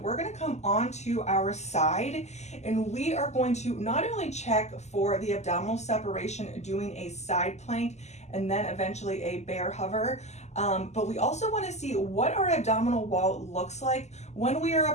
we're going to come onto our side, and we are going to not only check for the abdominal separation doing a side plank and then eventually a bear hover, but we also want to see what our abdominal wall looks like when we are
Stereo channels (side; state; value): right; late; 0.33 ms